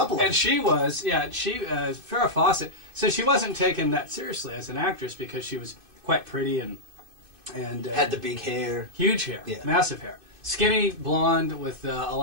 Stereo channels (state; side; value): late; left; 2.6 ms